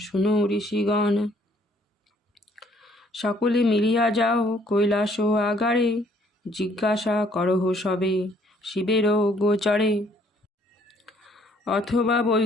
শুনো ঋষিগণ। সকলে মিলিয়া যাও কৈলাস আগারে, জিজ্ঞাসা করহ সবে শিবের গোচরে। অথবা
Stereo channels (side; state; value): both; normal; correlation 0.63